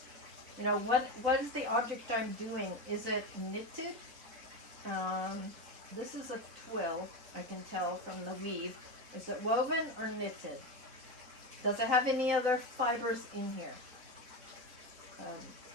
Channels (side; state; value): left; late; 4.3 ms